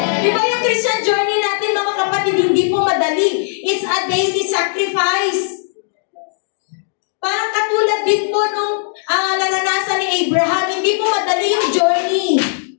Di ba yung Christian journey natin, mga kapatid, hindi po madali. It's a daily sacrifice. Parang katulad din po nung naranasan ni Abraham, hindi po madali yung journey.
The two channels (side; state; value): right; silent; digital silence